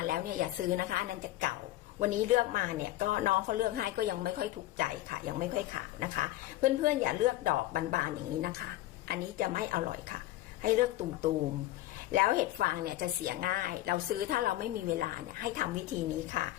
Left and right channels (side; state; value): right; quieter; 15.6 dB